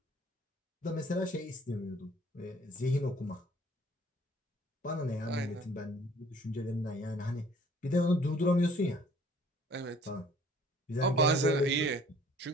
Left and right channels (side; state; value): both; normal; correlation 0.56